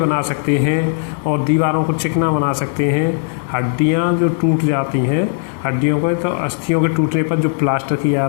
सकते हैं, और दीवारों को चिकना बना सकते हैं। हड्डियाँ जो टूट जाती हैं, हड्डियों को, तो अस्थियों के टूटने पर जो प्लास्टर किया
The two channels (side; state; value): right; silent; digital silence